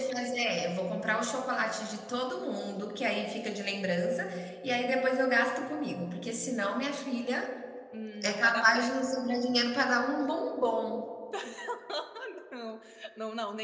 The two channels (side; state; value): both; identical; correlation 1.00